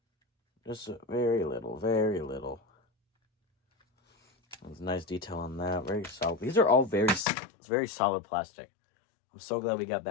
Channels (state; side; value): drops out; right; at 7.2 s